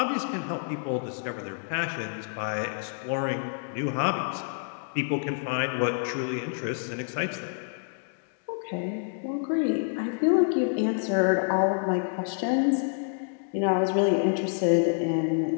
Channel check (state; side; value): silent; right; digital silence